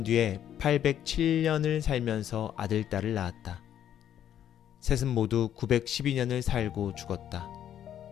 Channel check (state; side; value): quieter; right; 10.4 dB